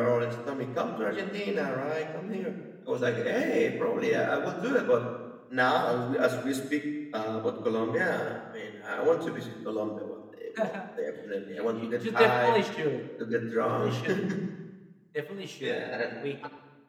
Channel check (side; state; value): both; identical; correlation 1.00